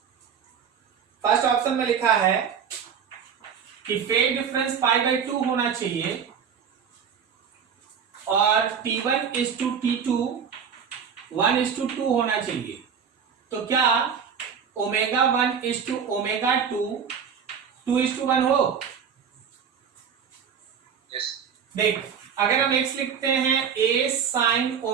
फर्स्ट ऑप्शन में लिखा है कि फेज डिफरेंस π/2 होना चाहिए और T1:T2 1:2 होना चाहिए। तो क्या ω1:ω2 2:1 हो? Yes. देख, अगर हम x लिखते हैं a sin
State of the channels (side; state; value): left; quieter; 7.2 dB